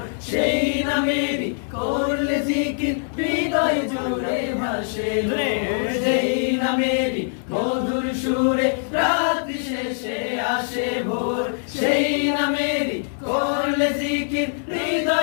সেই নামেরই করলে জিকির হৃদয় জুড়ে ভাসে সেই নামেরই মধুর সুরে রাত্রি শেষে আসে ভোর সেই নামেরই করলে জিকির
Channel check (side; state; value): right; silent; 64 dB below the other